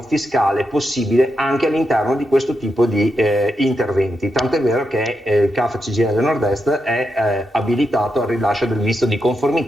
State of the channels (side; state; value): both; normal; correlation 0.84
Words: fiscale possibile anche all'interno di questo tipo di interventi. Tant'è vero che il CAF CGIL Nord-Est è abilitato al rilascio del visto di